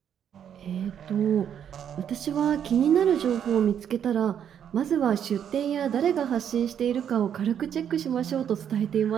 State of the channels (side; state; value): left; quieter; 8.9 dB